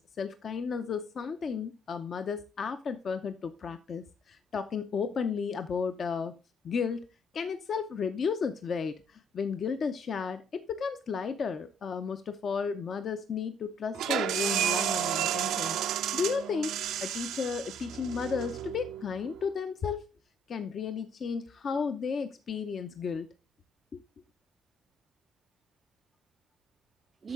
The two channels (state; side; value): normal; both; correlation 0.64